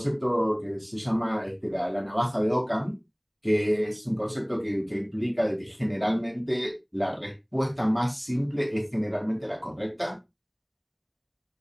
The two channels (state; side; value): identical; both; correlation 1.00